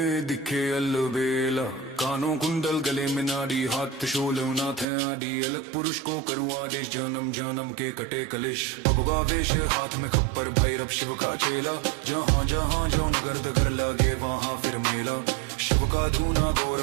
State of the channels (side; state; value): left; drops out; at 4.9 s